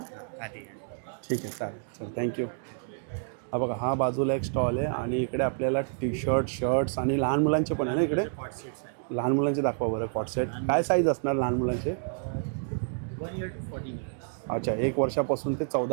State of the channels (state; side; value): silent; left; digital silence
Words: आधी है. ठीक आहे, चालेल. चल, थँक्यू. हा बघा, हा बाजूला एक स्टॉल आहे. आणि इकडे आपल्याला टी शर्ट, शर्ट्स आणि लहान मुलांचे पण आहे ना इकडे? कॉट सेट्स आहे. लहान मुलांचे दाखवा बरं. कॉट सेट काय साईज असणार लहान मुलांचे? 1 year to 14 years. अच्छा, 1 वर्षापासून ते